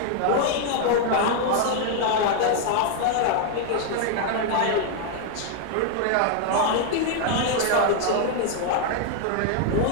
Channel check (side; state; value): both; different; correlation 0.00